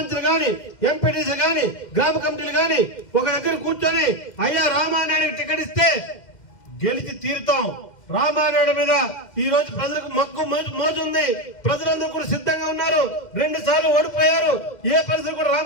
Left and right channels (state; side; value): late; right; 2.1 ms